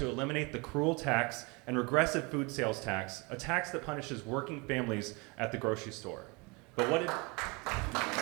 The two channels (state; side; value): quieter; left; 28.1 dB